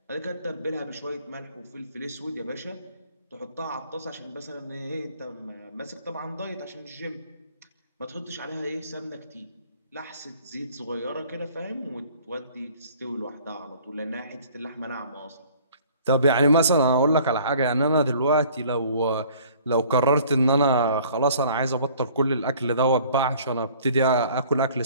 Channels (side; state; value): both; inverted; correlation -0.53